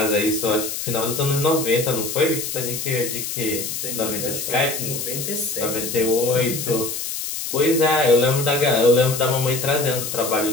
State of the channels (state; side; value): noise; left; hiss, 5 dB below the sound